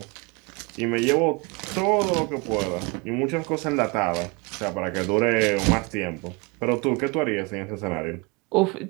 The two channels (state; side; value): quieter; left; 28.4 dB